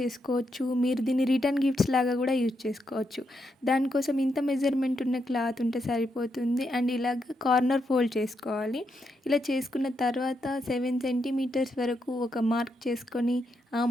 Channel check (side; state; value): both; normal; correlation 0.81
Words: మీరు దీన్ని రిటర్న్ గిఫ్ట్స్ లాగా కూడా యూజ్ చేసుకోవచ్చు. దానికోసం ఇంత మెజర్‌మెంట్ ఉన్న క్లాత్ ఉంటే సరిపోతుంది. అండ్ ఇలాగ కార్నర్ ఫోల్డ్ చేసుకోవాలి. ఇలా చేసుకున్న తర్వాత 7 సెంటీమీటర్స్ వరకు ఒక మార్క్ చేసుకొని, ఆ